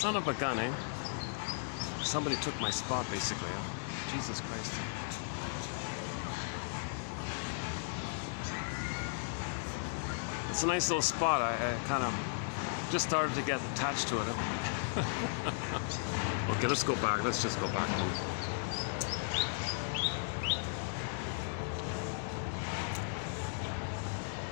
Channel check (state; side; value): silent; right; digital silence